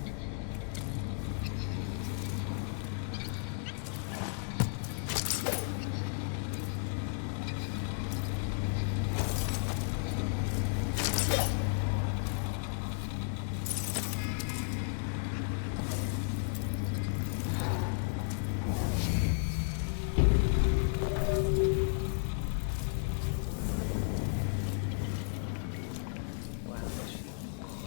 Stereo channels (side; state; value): right; silent; 55 dB below the other